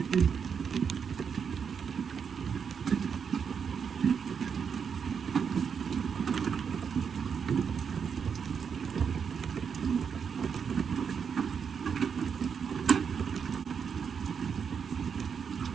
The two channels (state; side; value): quieter; left; 6.7 dB